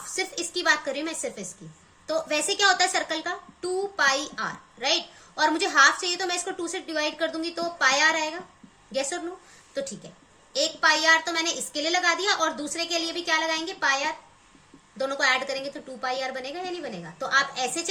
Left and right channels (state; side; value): identical; both; correlation 1.00